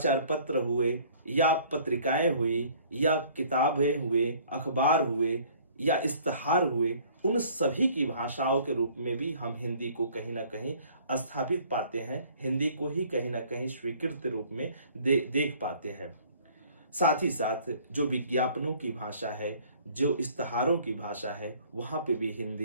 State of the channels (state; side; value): inverted; both; correlation -0.54